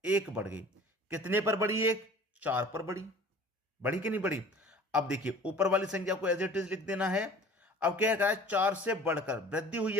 1 बढ़ गई। कितने पर बढ़ी, 1 4 पर बढ़ी, बढ़ी कि नहीं बढ़ी? अब देखिए ऊपर वाली संख्या को एज इट इज लिख देना है। अब क्या कहा है, 4 से बढ़कर वृद्धि हुई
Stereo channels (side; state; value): both; normal; correlation 0.46